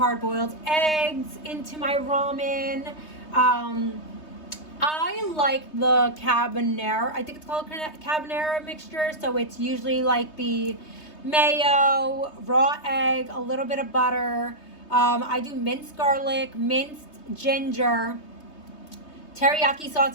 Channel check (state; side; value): late; right; 3.2 ms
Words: eggs into my ramen. I like the carbonara. I think it's called carbonara mixture. So it's usually like the mayo, raw egg, a little bit of butter. I do minced garlic, minced ginger, teriyaki